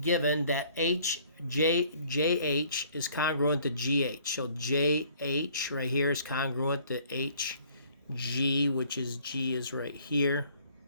that JH is congruent to GH. So JH right here is congruent to HG, which is G is right here.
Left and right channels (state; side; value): inverted; both; correlation -0.58